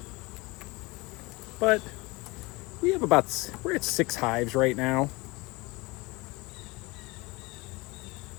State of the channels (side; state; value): right; quieter; 24.2 dB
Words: But we have we're at 6 hives right now.